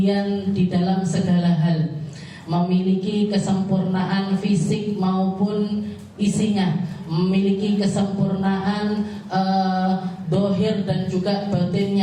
di dalam segala hal, memiliki kesempurnaan fisik maupun isinya, memiliki kesempurnaan dohir dan juga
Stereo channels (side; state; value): both; identical; correlation 1.00